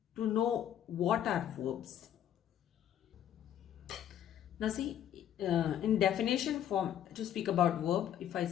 to know what are verbs. Now see, in definition form, to speak about verb, if I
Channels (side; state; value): right; quieter; 10.4 dB